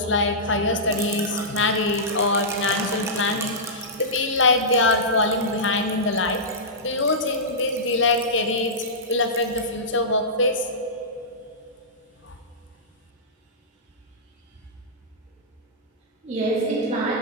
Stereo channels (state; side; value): normal; both; correlation -0.15